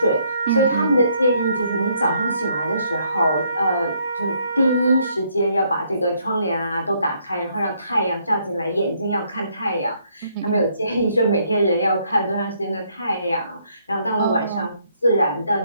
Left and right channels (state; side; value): inverted; both; correlation -0.70